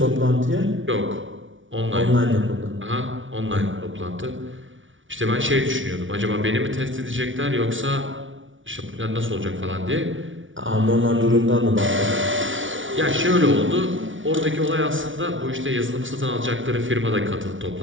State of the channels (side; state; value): left; late; 0.56 ms